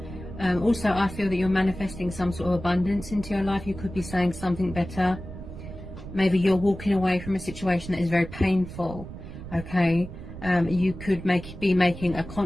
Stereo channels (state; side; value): noise; right; rumble, 12 dB below the sound